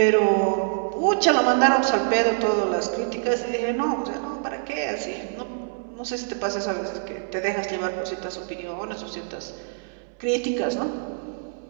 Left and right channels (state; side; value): silent; left; 62 dB below the other